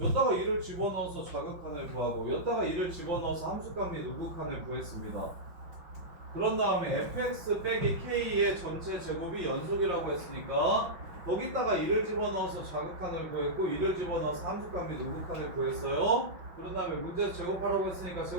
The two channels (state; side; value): late; left; 5.7 ms